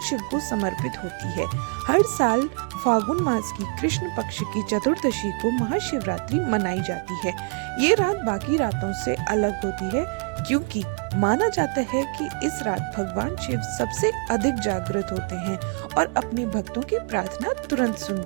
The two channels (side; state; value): left; quieter; 36.8 dB